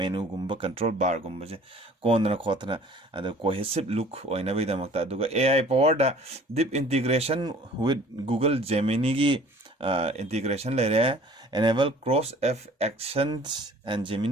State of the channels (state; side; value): normal; both; correlation 0.50